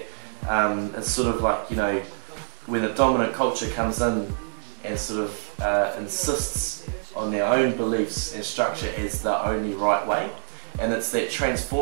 it's sort of like, when a dominant culture comes in and sort of insists on their own beliefs and structure as the only right way, and it's that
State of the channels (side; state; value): left; silent; digital silence